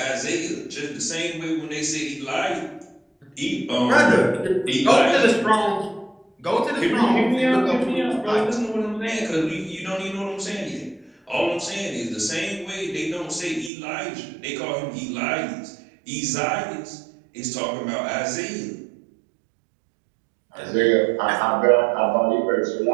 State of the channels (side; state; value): left; drops out; at 13.7 s